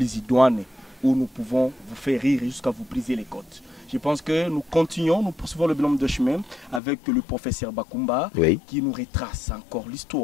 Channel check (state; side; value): drops out; right; at 6.8 s